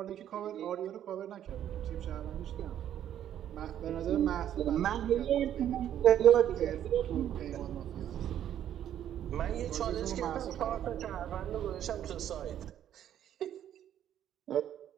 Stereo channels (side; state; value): left; quieter; 10.7 dB